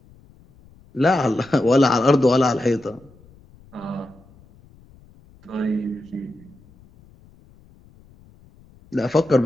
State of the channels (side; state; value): left; noise; rumble, 27 dB below the sound